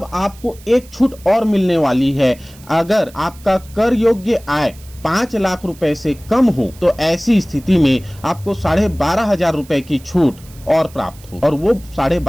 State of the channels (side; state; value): right; noise; hiss, 23 dB below the sound